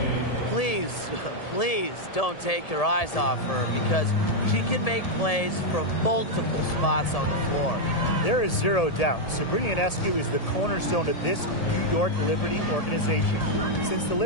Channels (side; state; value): right; late; 1.7 ms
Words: Please, please don't take your eyes off her, because she can make plays from multiple spots on the floor. There is zero doubt Sabrina Ionescu is the cornerstone of this New York Liberty organization. Since the